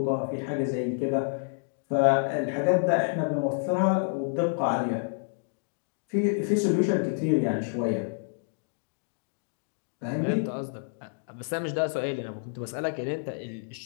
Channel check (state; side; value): silent; right; digital silence